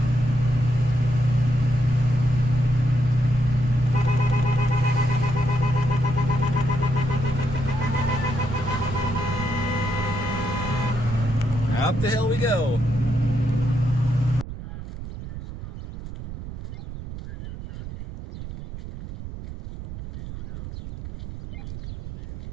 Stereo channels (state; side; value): noise; right; rumble, 9 dB below the sound